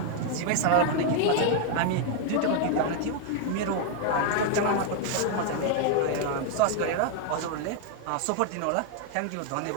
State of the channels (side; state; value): both; different; correlation 0.00